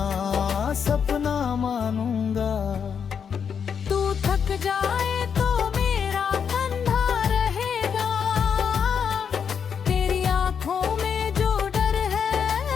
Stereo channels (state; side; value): quieter; right; 7.1 dB